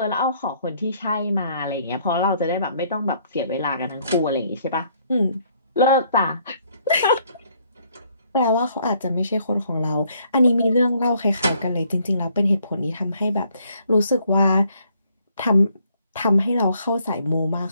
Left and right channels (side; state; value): both; inverted; correlation -0.67